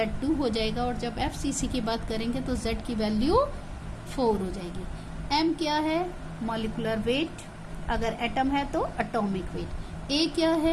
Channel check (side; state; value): both; identical; correlation 1.00